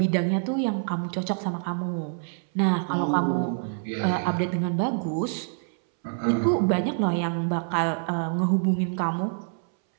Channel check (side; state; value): left; silent; 61 dB below the other